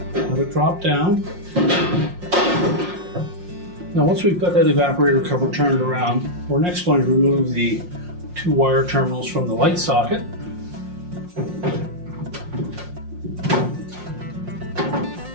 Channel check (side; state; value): left; late; 5.6 ms